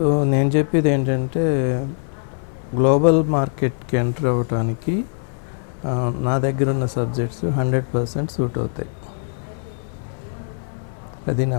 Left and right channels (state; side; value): silent; right; 57 dB below the other